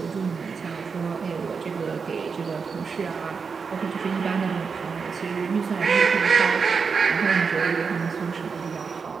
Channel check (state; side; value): quieter; left; 5.5 dB